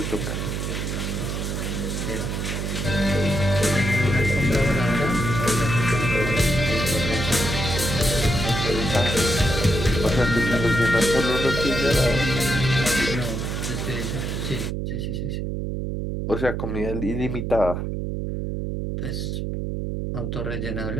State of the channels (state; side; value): noise; right; hum, 3 dB below the sound